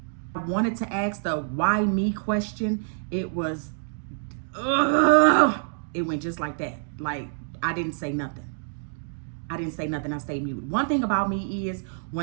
wanted to ask the why me question. It was, it went just like that. Like, I didn't say nothing. I stayed muted. One thing about me is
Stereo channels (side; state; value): left; silent; digital silence